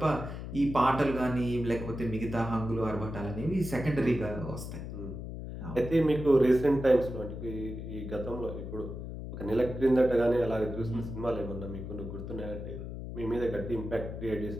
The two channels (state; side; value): noise; left; hum, 8 dB below the sound